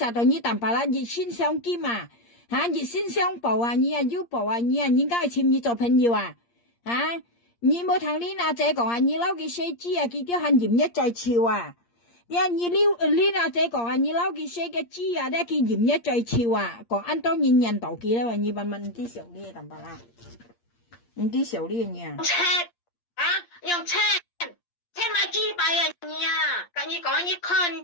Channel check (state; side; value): late; right; 8.6 ms